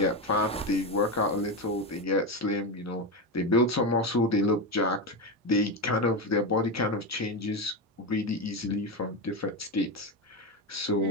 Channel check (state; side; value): normal; both; correlation 0.15